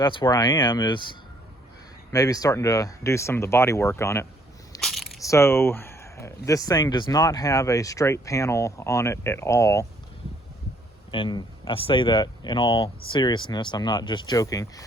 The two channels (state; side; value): normal; both; correlation 0.65